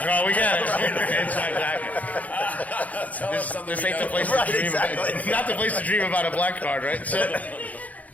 we got it." It's exactly. This ain't the place to dream about. Not the place to dream about a black card, right?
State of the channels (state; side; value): late; right; 0.074 ms